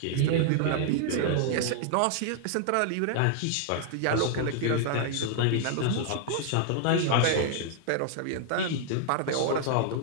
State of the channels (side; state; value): both; different; correlation -0.01